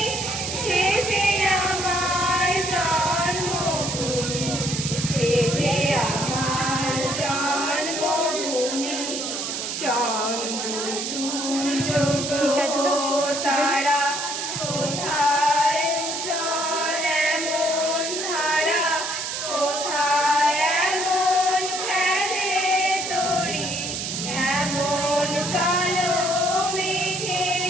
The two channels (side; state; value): right; noise; hiss, 4 dB below the sound